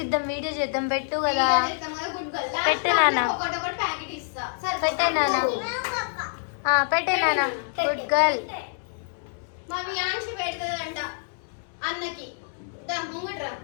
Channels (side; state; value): right; silent; digital silence